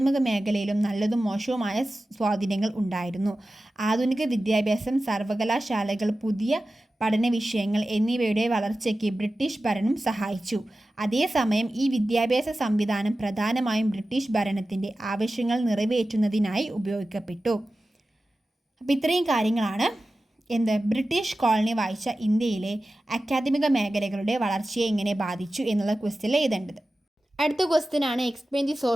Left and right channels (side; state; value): both; normal; correlation 0.94